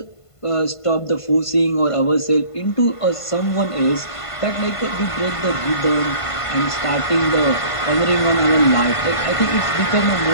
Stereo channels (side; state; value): right; late; 1.5 ms